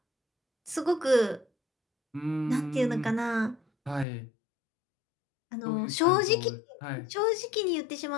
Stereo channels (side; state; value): right; drops out; at 4.0 s